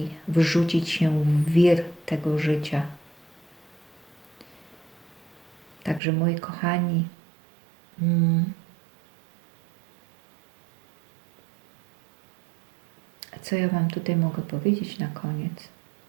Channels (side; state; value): left; drops out; at 6.0 s